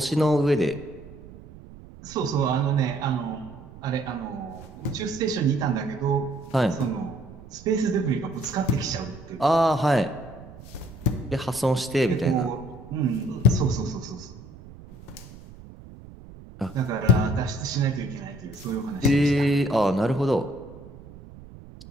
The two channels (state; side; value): noise; right; rumble, 18 dB below the sound